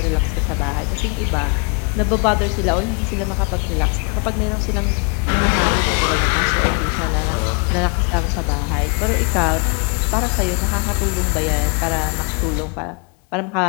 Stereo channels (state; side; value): quieter; right; 34.7 dB